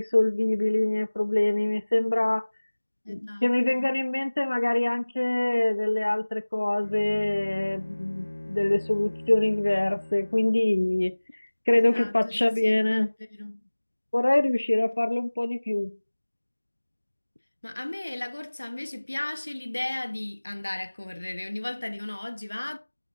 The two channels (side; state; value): both; inverted; correlation -1.00